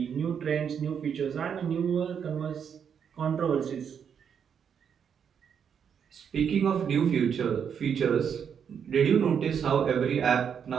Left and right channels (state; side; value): quieter; left; 7.6 dB